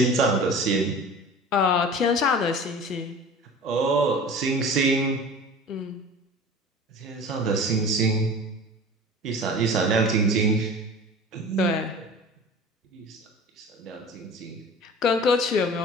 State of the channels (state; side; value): normal; both; correlation 0.39